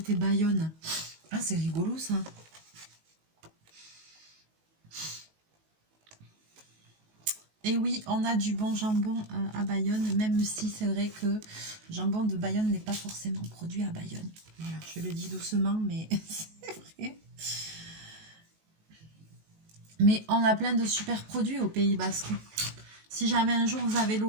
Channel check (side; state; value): left; late; 19 ms